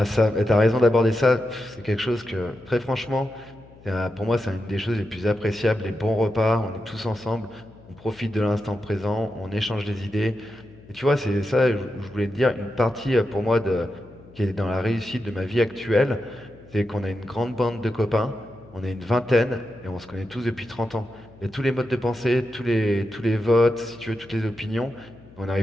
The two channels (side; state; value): left; noise; hum, 23 dB below the sound